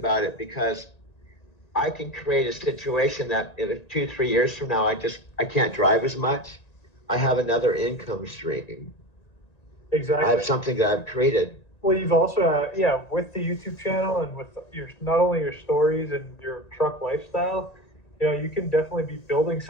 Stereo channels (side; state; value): right; late; 1.9 ms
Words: it because I can create a situation that if 2-3 years from now I can't drive as much, I have another income stream. Exactly. I have something that I've created. Well, you've also, with the YouTube channel and with not only your stories and your truck lifestyle, you can definitely be building